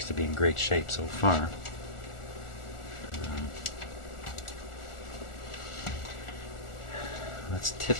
to be in great shape so far. Let's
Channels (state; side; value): late; right; 1.4 ms